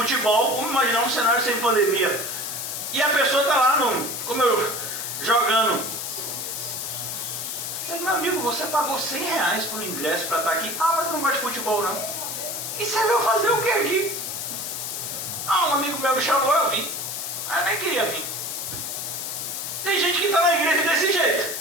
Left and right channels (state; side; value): noise; left; hiss, 5 dB below the sound